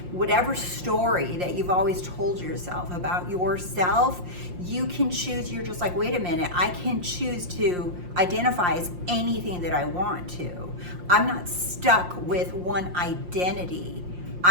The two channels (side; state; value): left; late; 5.7 ms